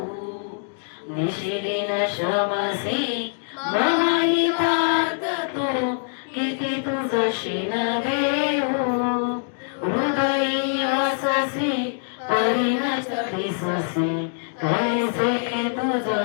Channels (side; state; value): right; silent; digital silence